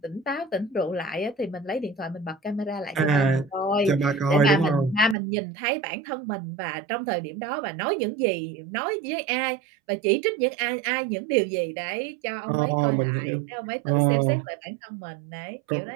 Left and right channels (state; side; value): drops out; left; at 5.2 s